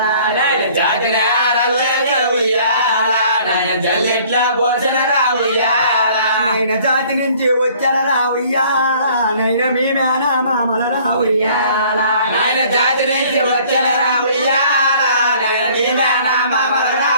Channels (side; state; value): both; inverted; correlation -0.55